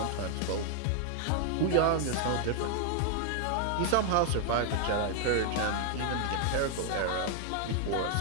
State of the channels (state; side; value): different; both; correlation 0.00